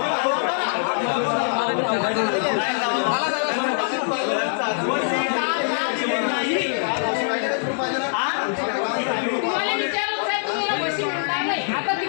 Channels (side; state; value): right; silent; digital silence